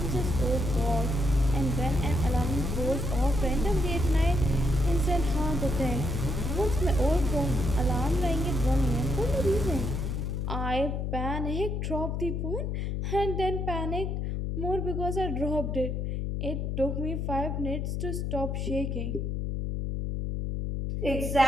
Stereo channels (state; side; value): noise; left; hum, 1 dB below the sound